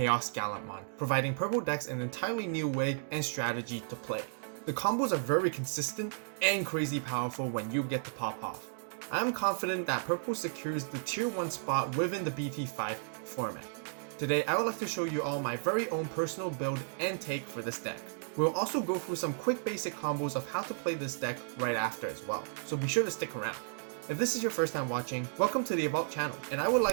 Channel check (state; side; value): silent; left; digital silence